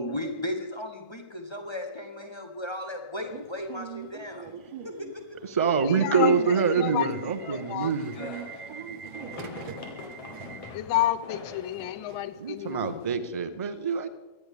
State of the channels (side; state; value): right; late; 1.4 ms